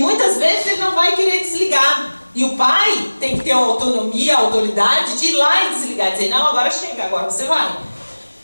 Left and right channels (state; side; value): inverted; both; correlation -1.00